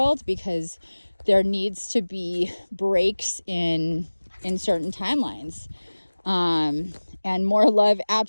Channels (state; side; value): inverted; both; correlation -1.00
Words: because there needs to be breaks in certain timelines, and more love